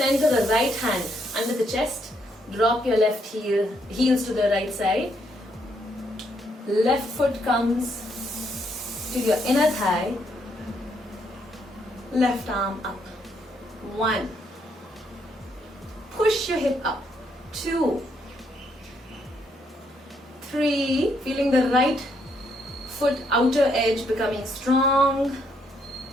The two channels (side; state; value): both; normal; correlation 0.74